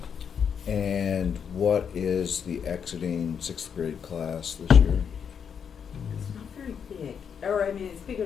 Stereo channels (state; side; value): quieter; right; 7.3 dB